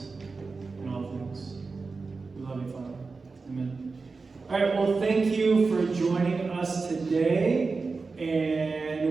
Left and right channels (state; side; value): quieter; left; 4.2 dB